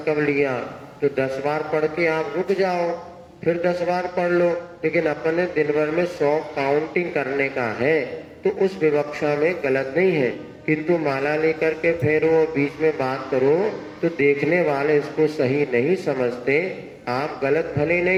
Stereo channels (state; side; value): identical; both; correlation 1.00